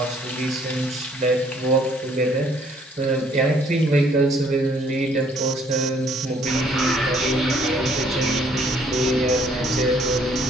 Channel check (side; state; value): both; normal; correlation 0.64